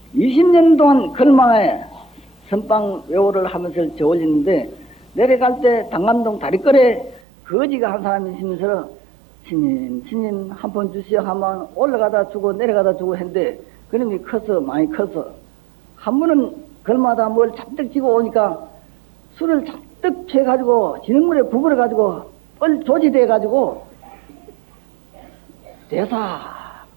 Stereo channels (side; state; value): left; drops out; at 7.2 s